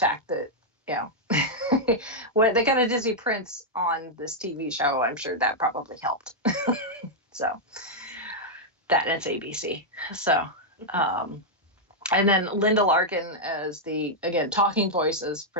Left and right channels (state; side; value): normal; both; correlation -0.04